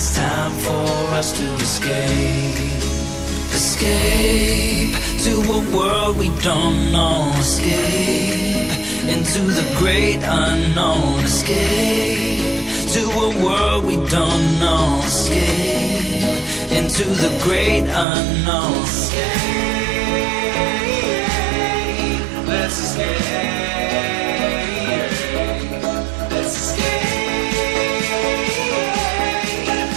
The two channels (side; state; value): left; drops out; at 18.1 s